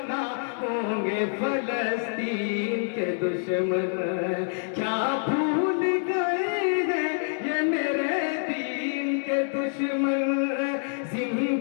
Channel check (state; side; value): silent; right; digital silence